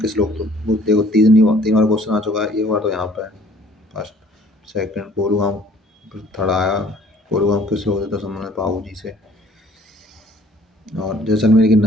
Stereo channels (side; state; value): both; normal; correlation 0.55